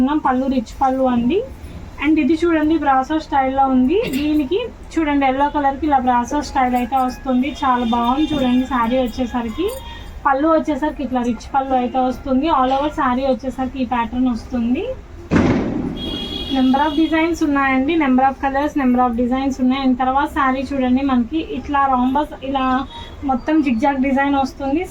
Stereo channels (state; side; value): identical; both; correlation 1.00